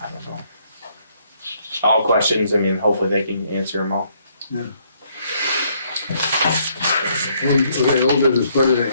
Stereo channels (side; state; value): both; inverted; correlation -0.69